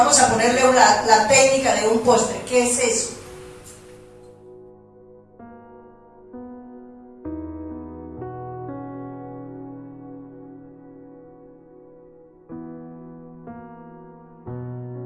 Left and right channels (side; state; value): both; identical; correlation 1.00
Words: a ponerle la técnica de un postre. ¿Qué es eso?